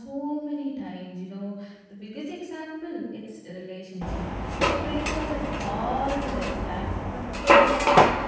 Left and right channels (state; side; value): identical; both; correlation 1.00